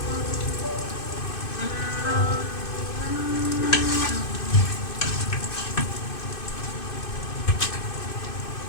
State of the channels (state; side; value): late; right; 2.5 ms